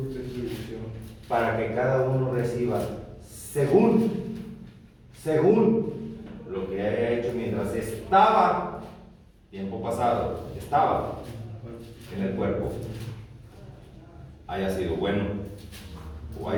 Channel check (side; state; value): both; identical; correlation 1.00